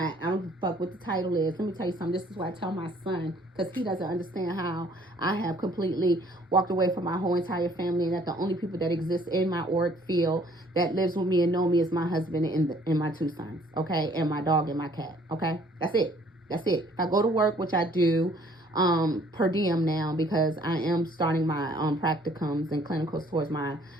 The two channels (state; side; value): normal; both; correlation 0.59